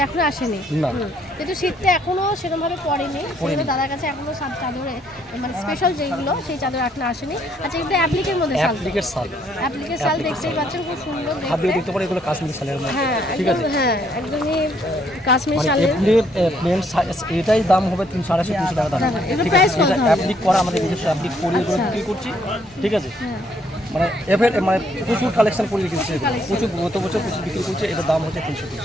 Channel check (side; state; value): both; normal; correlation 0.69